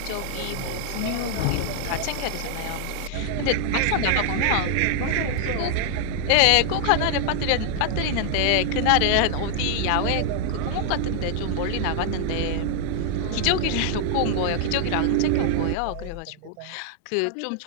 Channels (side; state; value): both; different; correlation 0.00